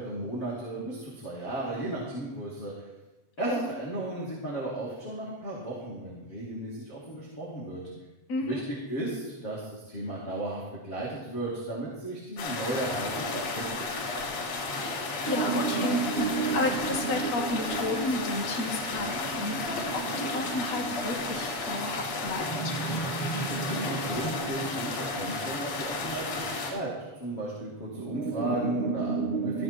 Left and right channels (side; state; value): right; late; 7.8 ms